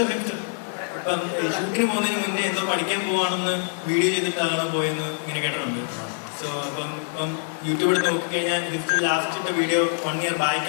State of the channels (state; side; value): silent; right; digital silence